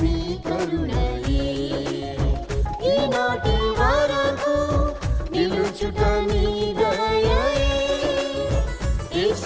నీ కరుణయే, ఈనాటి వరకు నిలుచుట నీ దయయే.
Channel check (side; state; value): both; identical; correlation 1.00